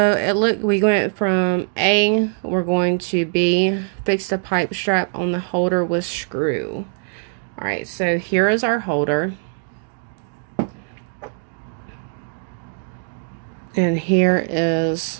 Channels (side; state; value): left; silent; 65 dB below the other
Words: we went from A, we're going to B, fix the pipe strap on the holder with screw. Alright, so here is our holder. And here